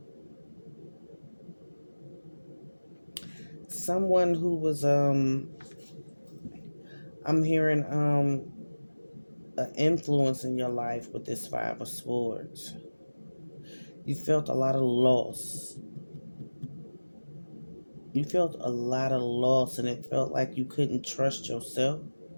Someone who was I'm hearing an influence in your life with this Five of Swords. You felt a lot of loss. You felt a lot of loss, and it felt like you couldn't trust yourself.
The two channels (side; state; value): both; inverted; correlation -1.00